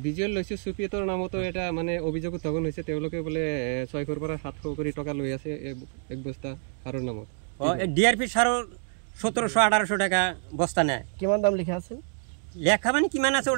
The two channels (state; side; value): silent; left; 60 dB below the other